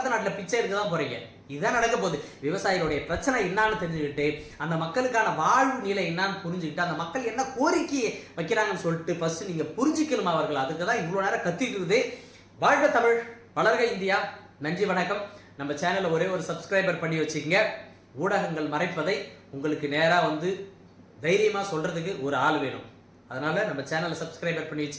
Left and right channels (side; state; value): both; identical; correlation 1.00